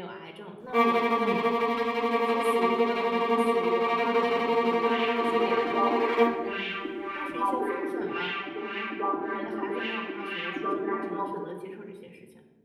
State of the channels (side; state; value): both; identical; correlation 1.00